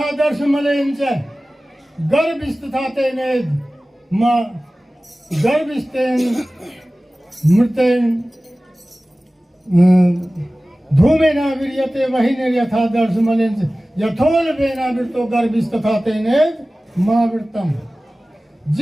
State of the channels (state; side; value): normal; both; correlation 0.97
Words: दर्श मलेन च गर्भिष्ठता तेने मां गर्भिष्ठेन मृतेन धूमे न विर्यते वही नर्यथा दर्श मलेन च यथोल वेना वृतो गर्भिष्ठता तेने मां वृतम।